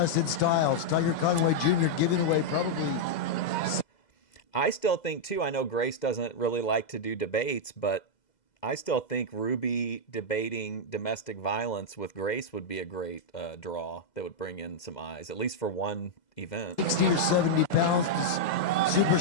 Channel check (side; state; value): right; late; 2.0 ms